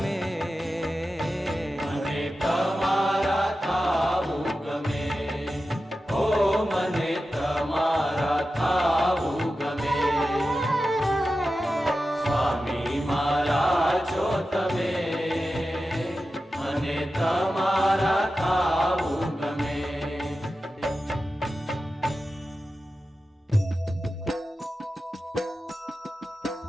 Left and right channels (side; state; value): both; normal; correlation 0.93